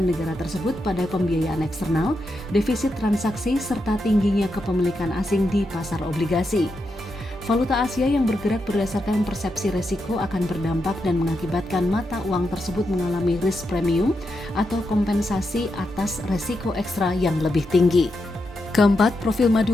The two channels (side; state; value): both; normal; correlation 0.85